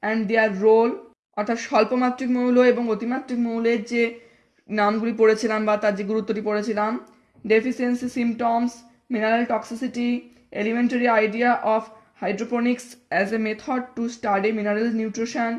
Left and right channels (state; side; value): identical; both; correlation 1.00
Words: and their role, অর্থাৎ স্বল্পমাত্রিক মৌল এবং অতিমাত্রিক মৌলের যে নামগুলি পড়েছিলাম বা তার যে গুরুত্বটি পড়েছিলাম, deficiency symptoms, mineral toxicity, elementary idea of hydroponics as a method to study mineral nutrition,